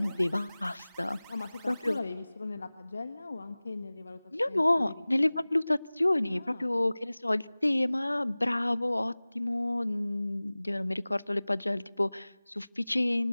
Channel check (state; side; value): inverted; both; correlation -0.99